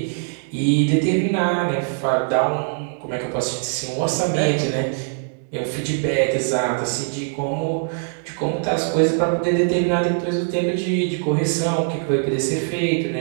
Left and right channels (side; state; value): left; silent; 64 dB below the other